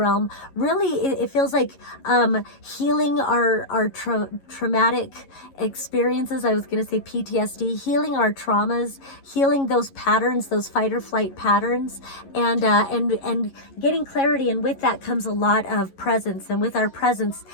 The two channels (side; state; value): right; late; 11 ms